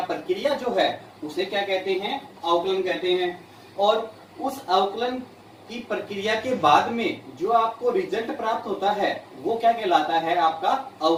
प्रक्रिया जो है उसे क्या कहते हैं? अवकलन कहते हैं। और उस अवकलन की प्रक्रिया के बाद में जो आपको रिजल्ट प्राप्त होता है वो क्या कहलाता है? आपका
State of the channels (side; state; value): both; identical; correlation 1.00